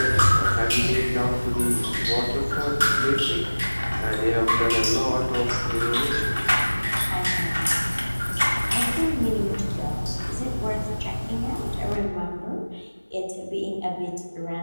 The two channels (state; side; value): inverted; both; correlation -1.00